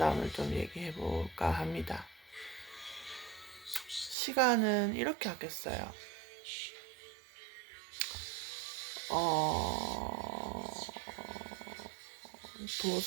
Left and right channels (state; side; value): drops out; left; at 4.2 s